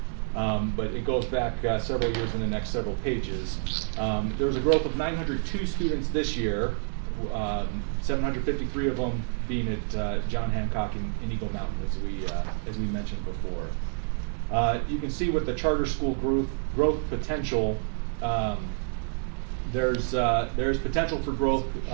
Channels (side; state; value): left; silent; 59 dB below the other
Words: but it goes back several years in the next several pages. There was a growth of 902 students this year, 753 of them being at John Hancock in Eagle Mountain, as we mentioned before. You can see with the charter school growth potential, there's potential for growth